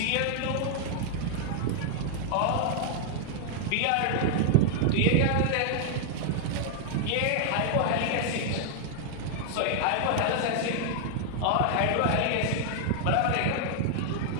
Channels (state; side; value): different; both; correlation 0.00